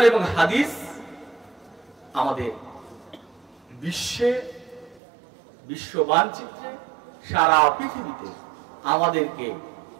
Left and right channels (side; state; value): left; drops out; at 5.0 s